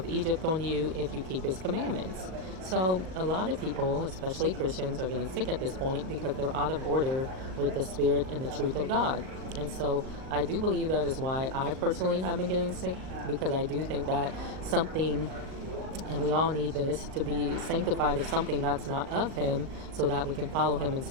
Egypt on you if you keep his commandments. So a lot of people, especially Christians, are getting sick at this point because they're out of order with the Spirit and the truth of God. And so I do believe that is why I personally have been getting sick, because I do think that something, and we all need this, to be sanctified of something that's not of him so that we can follow him in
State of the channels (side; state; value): left; late; 38 ms